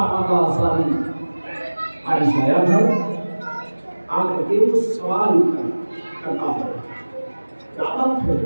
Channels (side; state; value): both; inverted; correlation -1.00